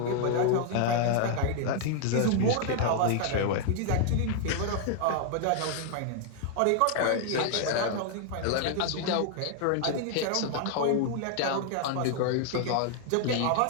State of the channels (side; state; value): both; different; correlation 0.00